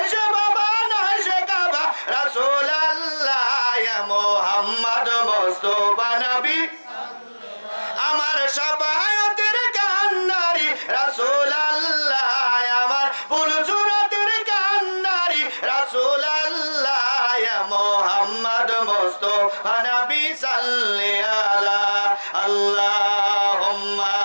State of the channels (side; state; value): both; inverted; correlation -1.00